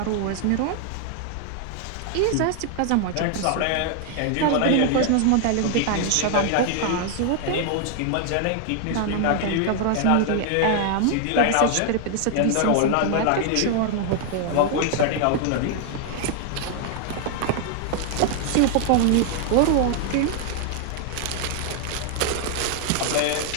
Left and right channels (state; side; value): different; both; correlation 0.00